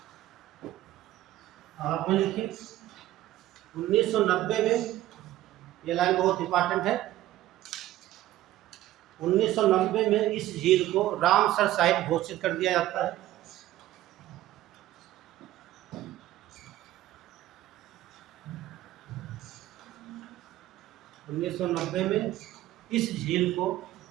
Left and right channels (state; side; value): quieter; left; 14.6 dB